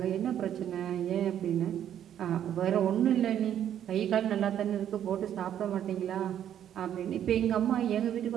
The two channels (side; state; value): left; quieter; 10.2 dB